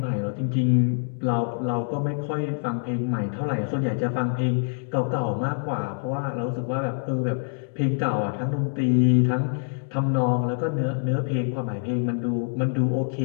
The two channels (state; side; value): silent; right; digital silence